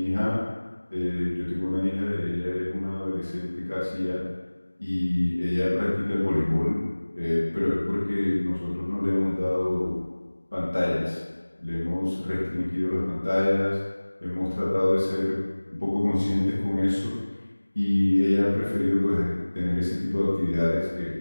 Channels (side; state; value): both; inverted; correlation -1.00